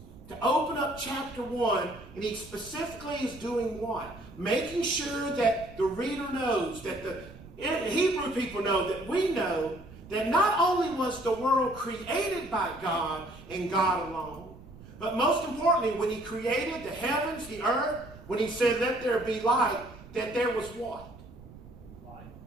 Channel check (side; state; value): right; noise; rumble, 18 dB below the sound